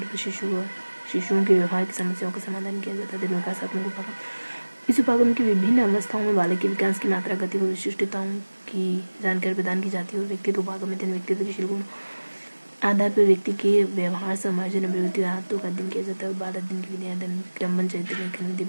शिशुओं के व्यवहार की समस्याओं का समाधान किया जाता है। विकासात्मक उपागम इस उपागम की विभिन्न अवस्थाओं में बालक के विकास की मात्रा गति व विशिष्टताओं की जानकारी प्रदान की जाती है और व्यक्तित्व उपागम अध्ययन व्यक्तित्व के गुण आधार पर व्यक्ति के व्यवहार समायोजन अभिवृद्धि और आत्तों का अध्ययन किया जाता है और बाल अध्ययन की विधियां अध्ययन क्रमबद्ध चरित्र लेखन विधि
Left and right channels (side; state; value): both; inverted; correlation -1.00